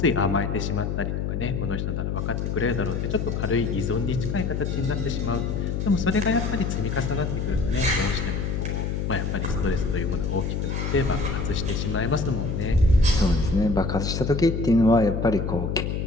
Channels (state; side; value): noise; left; hum, 1 dB below the sound